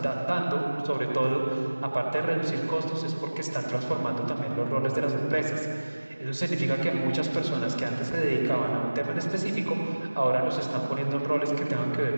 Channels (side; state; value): both; inverted; correlation -1.00